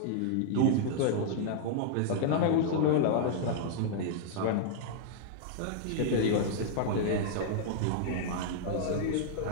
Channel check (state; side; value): different; both; correlation -0.01